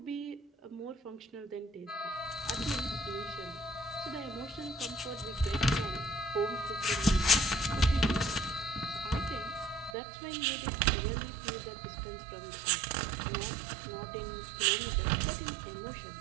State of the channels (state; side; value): drops out; left; at 10.0 s